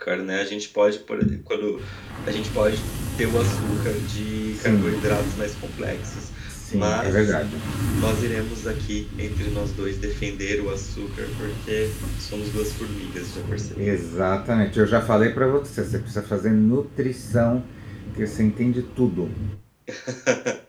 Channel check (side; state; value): both; identical; correlation 1.00